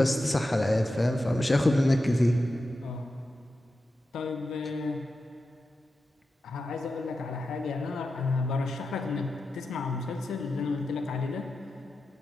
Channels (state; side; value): normal; both; correlation 0.91